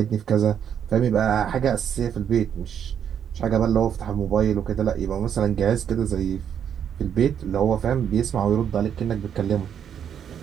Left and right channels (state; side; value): quieter; left; 8.6 dB